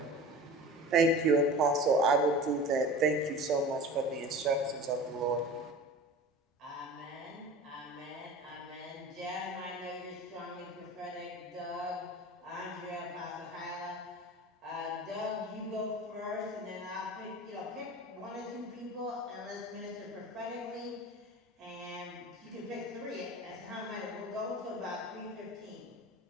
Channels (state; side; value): normal; both; correlation 0.36